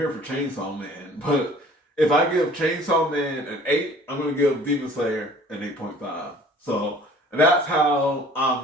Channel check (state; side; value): normal; both; correlation 0.50